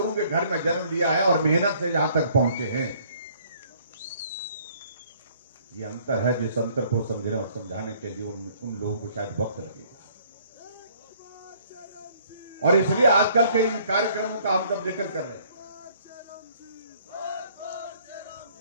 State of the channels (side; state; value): both; inverted; correlation -0.60